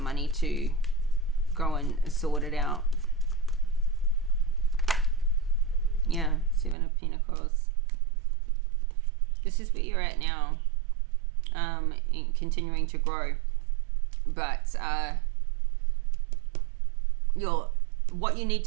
to go and sort it out. Yeah, Seven of Pentacles. This is where you're at now, in continuing to grow. But what you need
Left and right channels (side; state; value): left; drops out; at 6.8 s